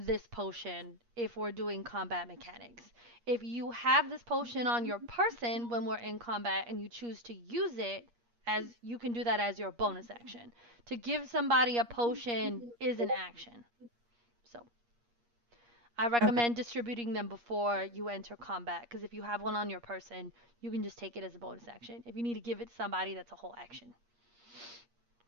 potion if we're doing combat mechanics. If you have this potion on your person when we're in combat and you choose to use it, as you can do that as your bonus action. To give somebody a potion is an action. So I Okay. recommend distributing them before you enter combat because if you have one on your person, you can just take it as a bonus action. If you need to give it to somebody, that's a whole action.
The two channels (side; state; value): left; late; 8.5 ms